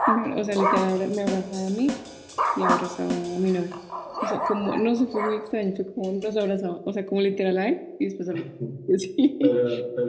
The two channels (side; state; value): both; identical; correlation 1.00